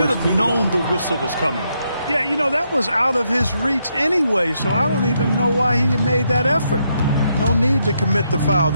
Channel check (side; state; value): both; inverted; correlation -0.78